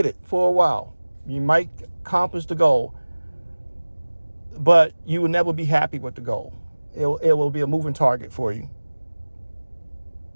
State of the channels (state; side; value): inverted; both; correlation -1.00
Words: it for a while. You might accomplish the goal, but you will never be happy with the goal. It will be a moving target for you.